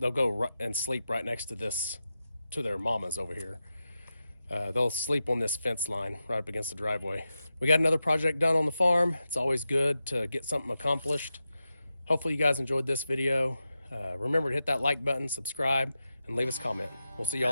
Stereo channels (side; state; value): both; inverted; correlation -0.90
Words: and sleep right next to their mamas over here. They'll sleep on this fence line right up against the driveway. We got another project done on the farm. It's always good to get something accomplished. Hopefully you guys enjoyed this video. Remember to hit that like button, subscribe, and leave us a comment. We'll see